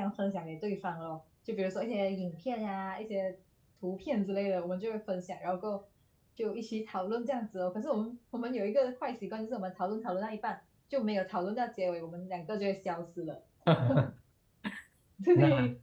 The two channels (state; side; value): identical; both; correlation 1.00